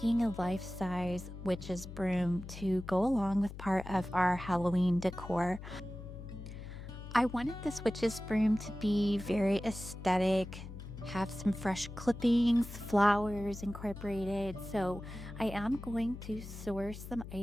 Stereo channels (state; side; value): noise; left; hum, 12 dB below the sound